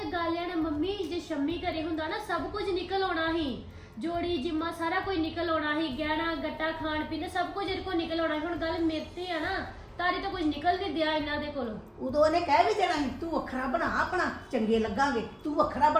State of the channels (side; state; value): both; identical; correlation 1.00